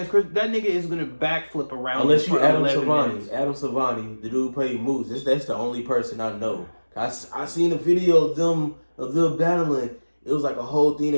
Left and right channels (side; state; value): both; inverted; correlation -1.00